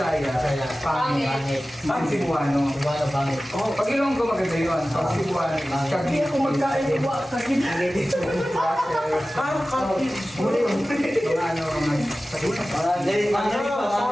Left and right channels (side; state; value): both; normal; correlation 0.96